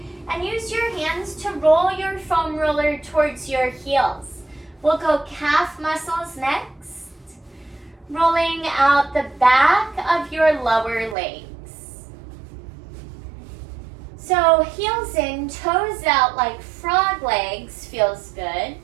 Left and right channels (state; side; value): drops out; left; at 11.2 s